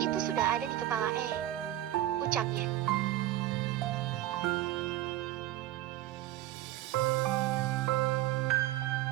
Itu sudah ada di kepala ucapnya.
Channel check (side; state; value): left; quieter; 14.5 dB